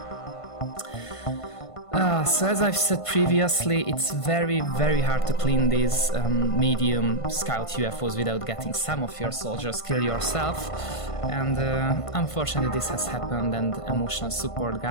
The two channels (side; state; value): right; late; 1.5 ms